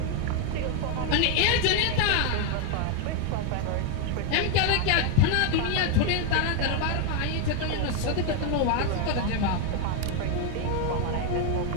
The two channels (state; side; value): different; both; correlation 0.01